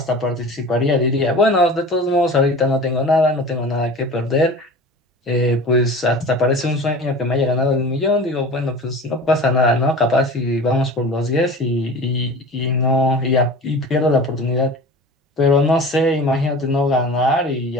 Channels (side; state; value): both; normal; correlation 0.37